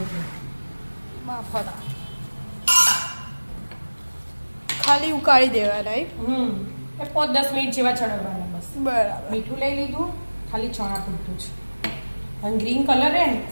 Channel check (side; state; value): both; inverted; correlation -1.00